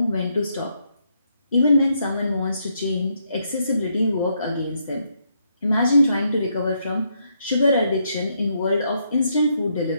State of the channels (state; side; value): inverted; both; correlation -0.77